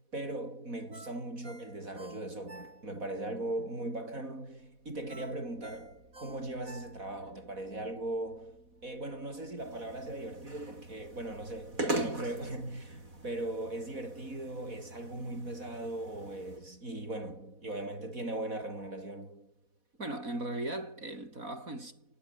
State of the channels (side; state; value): left; late; 4.1 ms